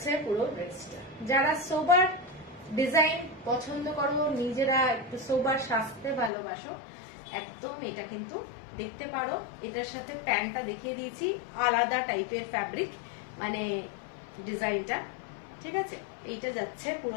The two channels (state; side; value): drops out; right; at 6.3 s